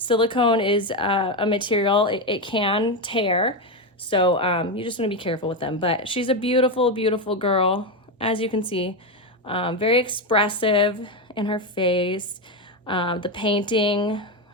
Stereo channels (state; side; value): normal; both; correlation 0.10